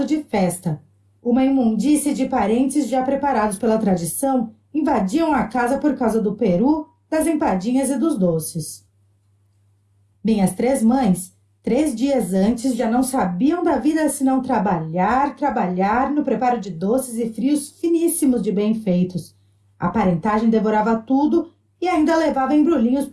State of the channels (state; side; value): identical; both; correlation 1.00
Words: de festa. Uma imundície de parentes já preparados pela tradição invadiam a casa por causa do peru, das empadinhas e dos doces. Minhas 3 mães, 3 dias antes, já não sabiam da vida senão trabalhar no preparo de doces e frios finíssimos de bem feitos. A parentagem devorava tudo e ainda levava embrulhinhos